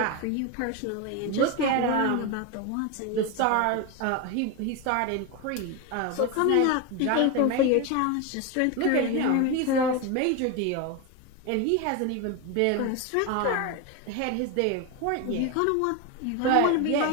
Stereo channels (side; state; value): both; different; correlation 0.02